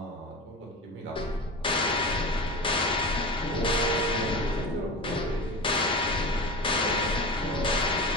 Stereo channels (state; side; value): normal; both; correlation 0.28